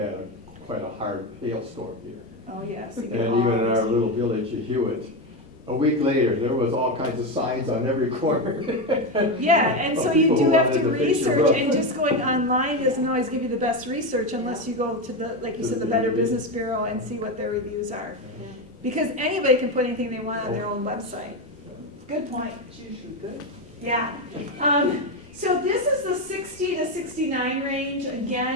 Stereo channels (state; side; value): normal; both; correlation 0.13